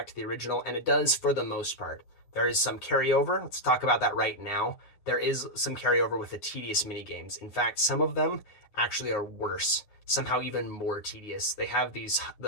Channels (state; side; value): late; right; 9.7 ms